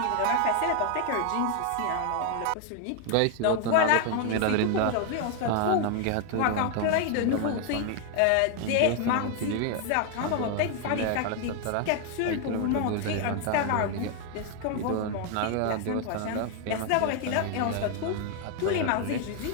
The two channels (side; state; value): both; different; correlation 0.00